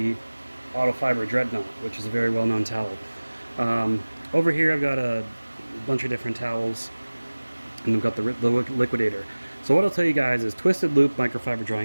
Microfiber Dreadnought, which is a very well-known towel. Over here I've got a bunch of different towels, and I've got the LIQUID8R. So what I'll tell you guys is twisted loop microfiber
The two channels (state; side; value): inverted; both; correlation -1.00